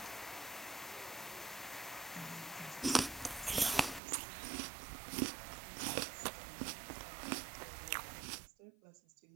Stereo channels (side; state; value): left; drops out; at 4.0 s